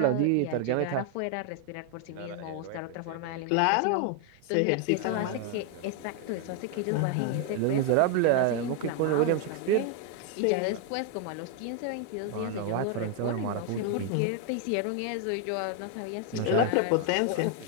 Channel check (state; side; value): different; both; correlation 0.00